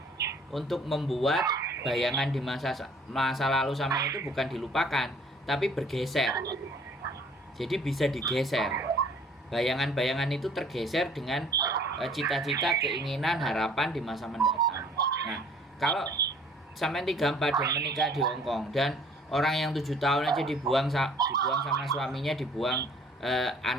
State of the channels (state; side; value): normal; both; correlation 0.55